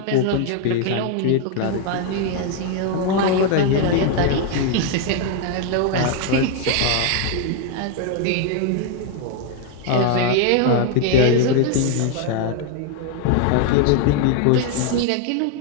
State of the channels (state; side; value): different; both; correlation 0.00